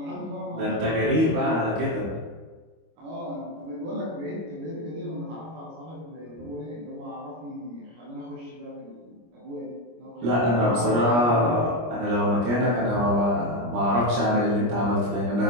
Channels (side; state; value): left; late; 25 ms